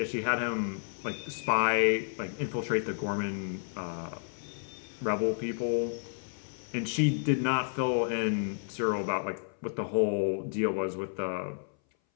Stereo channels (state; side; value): silent; right; 57 dB below the other